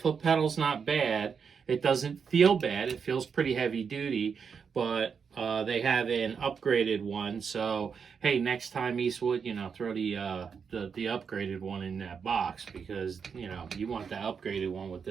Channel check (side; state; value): left; quieter; 6.3 dB